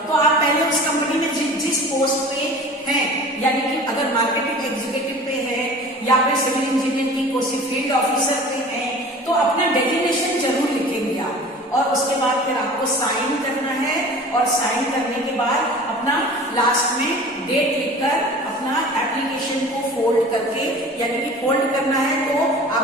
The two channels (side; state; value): both; normal; correlation 0.41